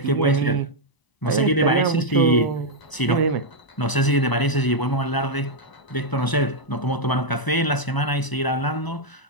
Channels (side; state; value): right; late; 1.0 ms